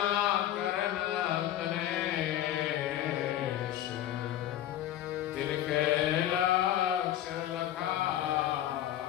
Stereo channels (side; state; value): right; quieter; 12.4 dB